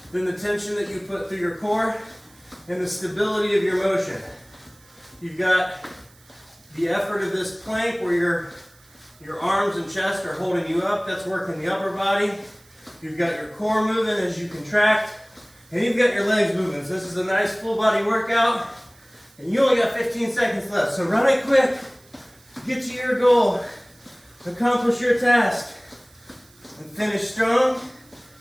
than the tension that you put through your core and the stability of your motion. You've got the effort of this plank where your arms and chest are holding you up. That's working the upper body. You've got your core moving as you contract, and you've got your legs moving. So this is a nice full body workout, and you only got 15 seconds left. So run it quick, get to your goal, accomplish your task, and finish strong.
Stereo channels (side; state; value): right; noise; hiss, 28 dB below the sound